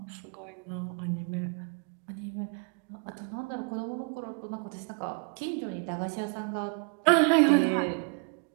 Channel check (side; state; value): left; quieter; 36.0 dB